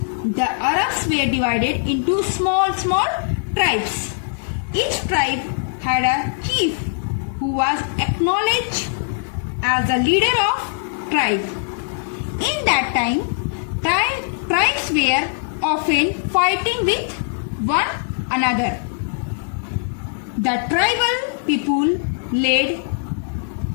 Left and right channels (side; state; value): right; silent; digital silence